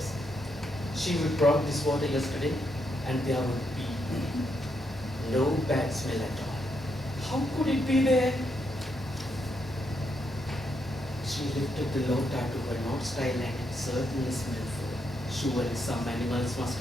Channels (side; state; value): both; normal; correlation 0.79